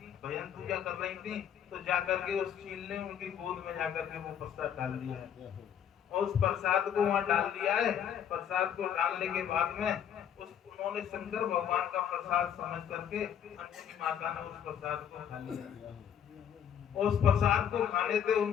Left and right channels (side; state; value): right; quieter; 8.9 dB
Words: भजन पूजा कर रही थी, तो जाकर के उस चील ने उनकी गोद में जाकर के वो प्रसाद डाल दिया है, और उस प्रसाद को वहां डाल दिया है। प्रसाद को डालने के बाद में उन्होंने शंकर भगवान का प्रसाद समझ करके अंजनी माता ने उस प्रसाद को खा लिया। उस प्रसाद को खाने से